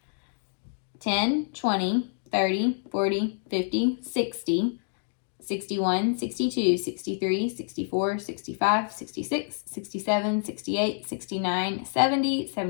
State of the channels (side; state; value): right; silent; digital silence